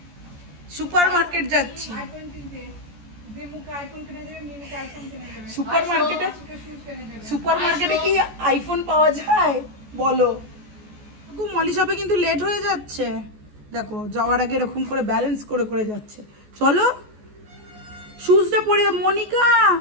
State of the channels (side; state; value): left; late; 14 ms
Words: সুপার মার্কেট যাচ্ছি? সুপার মার্কেটে কি আইফোন পাওয়া যায় বলো? মলি শপে কিন্তু লেট হয়ে যাচ্ছে, দেখো যাওয়ার আগে এরকম করে ব্যালেন্স করে করে যাচ্ছে। চলো শুজটা পরিয়ে, মনিকা